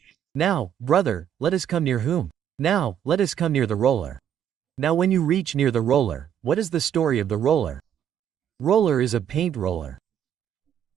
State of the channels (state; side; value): quieter; left; 9.4 dB